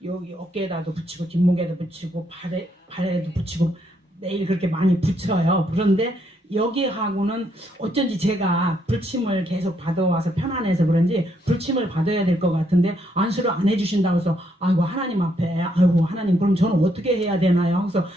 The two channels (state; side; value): normal; both; correlation 0.74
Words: 여기 어깨에다도 붙이고 뒷목에도 붙이고 발에도 붙이고 매일 그렇게 많이 붙여요. 그런데 여기하고는 어쩐지 제가 불침을 계속 받아와서 편안해서 그런지 불침을 받아야 될 것 같은데 안수를 안 해주신다고 해서 아이고 하나님 앞에 아이고 하나님 그럼 저는 어떻게 해야 되나요? 그래서